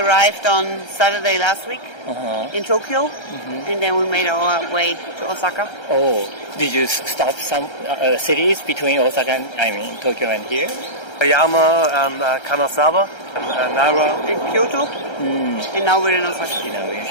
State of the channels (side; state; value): right; late; 1.3 ms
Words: on Saturday last week in Tokyo, and then we made our way to Osaka. Oh, did you stop some cities between Osaka and Tokyo and here? Oyama and Kanazawa and Nara. In Kyoto, and now we're in Osaka. We're